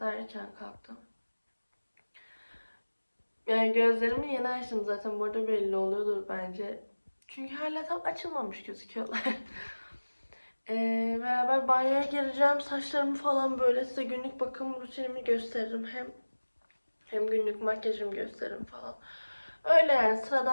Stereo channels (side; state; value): both; inverted; correlation -1.00